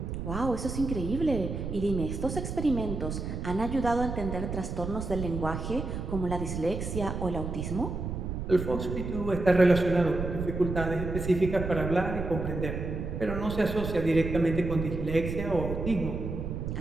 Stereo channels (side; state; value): right; noise; rumble, 5 dB below the sound